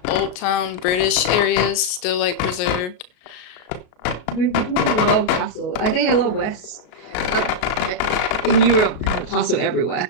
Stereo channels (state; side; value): late; right; 33 ms